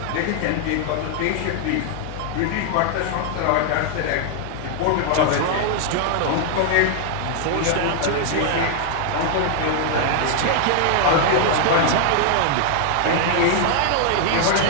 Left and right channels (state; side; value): different; both; correlation 0.00